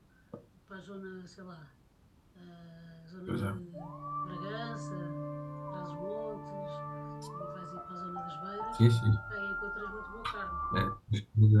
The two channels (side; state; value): both; identical; correlation 1.00